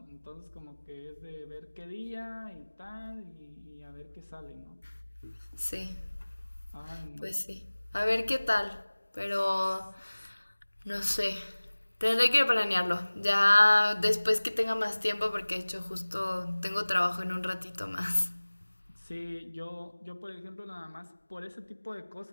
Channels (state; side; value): inverted; both; correlation -1.00